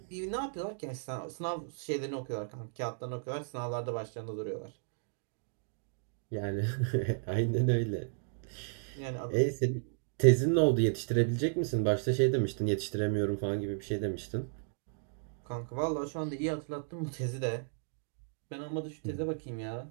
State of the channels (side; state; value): left; silent; digital silence